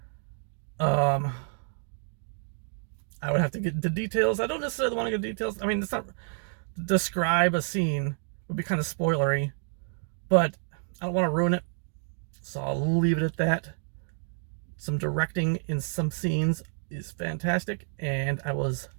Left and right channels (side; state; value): left; silent; 59 dB below the other